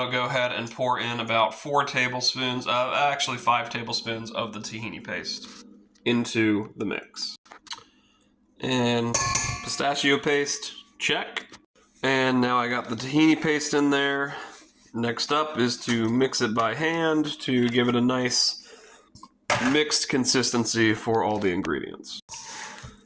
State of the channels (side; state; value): both; identical; correlation 1.00